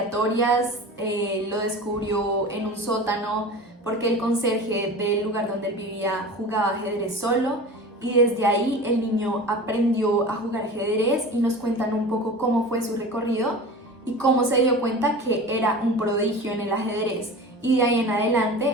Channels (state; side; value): normal; both; correlation 0.35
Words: Lo descubrió en un sótano porque el conserje del lugar donde él vivía jugaba ajedrez solo. Y desde ahí el niño aprendió a jugar ajedrez y nos cuentan un poco cómo fue su recorrido y cómo se dio cuenta que era un prodigio en el ajedrez. Y de ahí en